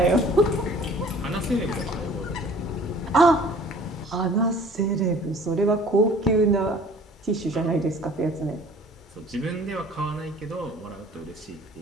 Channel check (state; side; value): normal; both; correlation 0.50